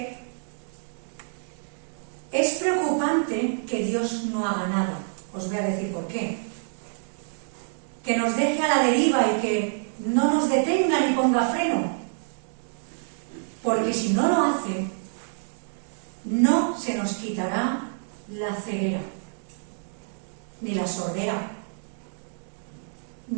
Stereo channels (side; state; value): left; silent; digital silence